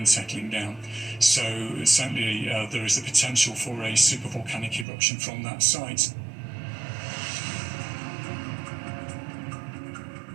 settling down. So certainly there is the potential for a supervolcanic eruption from that site.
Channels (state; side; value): drops out; left; at 4.9 s